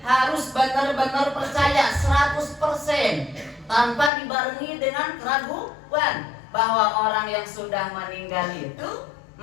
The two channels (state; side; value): drops out; right; at 4.1 s